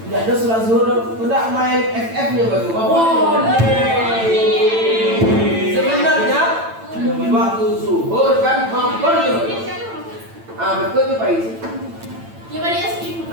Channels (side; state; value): left; late; 8.9 ms